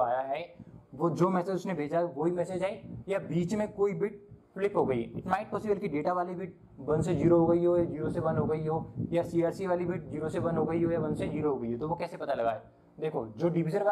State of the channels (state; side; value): identical; both; correlation 1.00